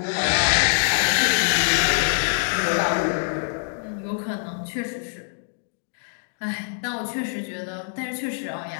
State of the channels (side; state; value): right; silent; digital silence